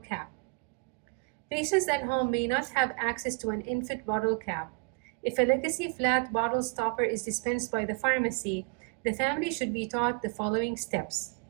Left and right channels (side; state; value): left; quieter; 36.7 dB